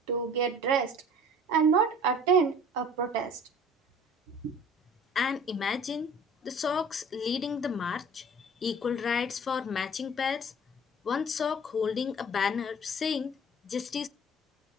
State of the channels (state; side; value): normal; both; correlation 0.47